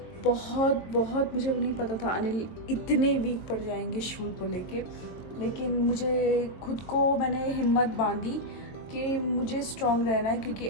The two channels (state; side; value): late; right; 22 ms